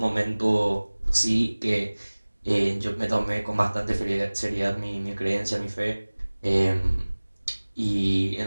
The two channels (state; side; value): inverted; both; correlation -1.00